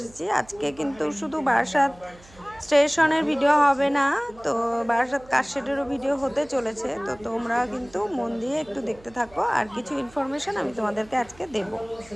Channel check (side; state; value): right; noise; hum, 24 dB below the sound